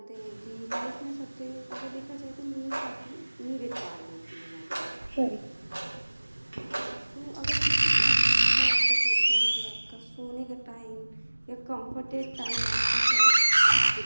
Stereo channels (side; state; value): both; inverted; correlation -1.00